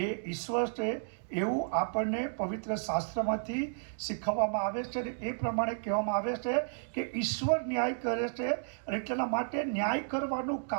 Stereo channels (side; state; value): left; silent; digital silence